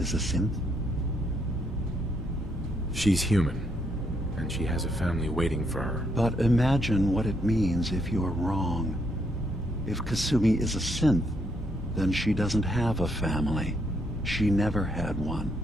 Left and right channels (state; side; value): normal; both; correlation 0.74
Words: a synth? She's human, and she has a family waiting for her. But imagine what it means if you're wrong. If Kasumi is a synth, then she doesn't have a family. She never had one.